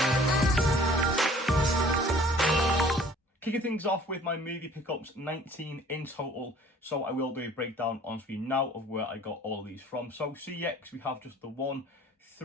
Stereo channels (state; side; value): normal; both; correlation 0.52